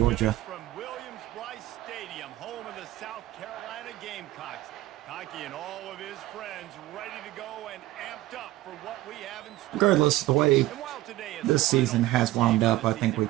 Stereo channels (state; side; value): quieter; left; 16.5 dB